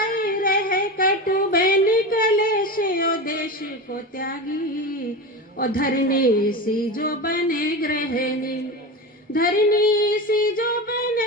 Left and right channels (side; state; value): both; normal; correlation 0.24